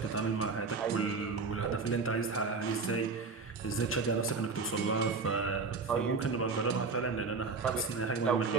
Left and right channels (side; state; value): left; quieter; 4.4 dB